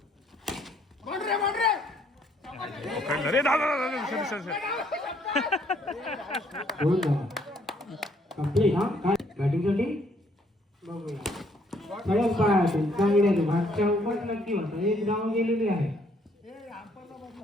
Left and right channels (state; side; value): normal; both; correlation 0.66